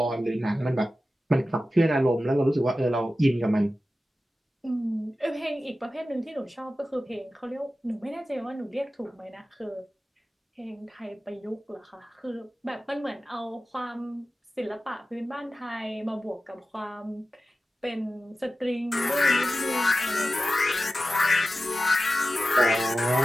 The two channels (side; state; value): both; normal; correlation 0.94